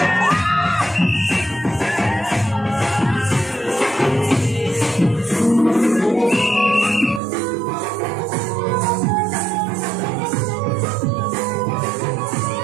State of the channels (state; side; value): drops out; left; at 7.2 s